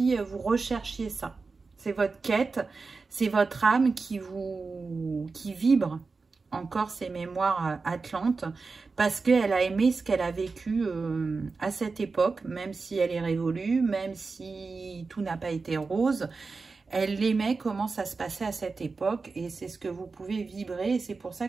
vous recherchiez ça. C'est votre quête, c'est votre âme qui vibre encore ces mémoires atlantes, parce qu'elle a aimé ce qu'elle a vécu à cette époque, même si elle est révolue, même si tout n'a pas été rose. Elle aimait comment ça se passait à cette époque, et c'est ce que vous pouvez vibrer, et c'est pour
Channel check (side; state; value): left; quieter; 4.2 dB